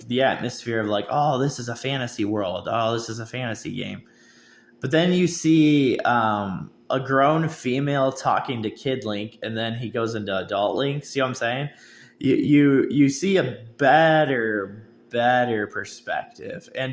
the atmosphere of like, oh, this is a fantasy world, oh, this is a fantasy game, but then you see a grown female talking to Kid Link, and then he goes into adult Link. See what I'm saying? You see a better perspective,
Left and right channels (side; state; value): both; identical; correlation 1.00